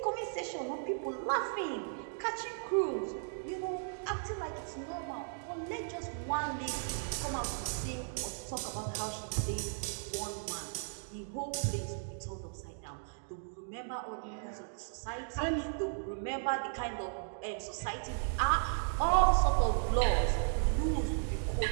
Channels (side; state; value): left; silent; digital silence